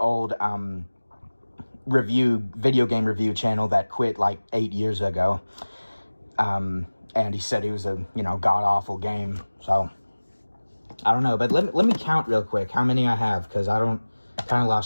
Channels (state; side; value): inverted; both; correlation -1.00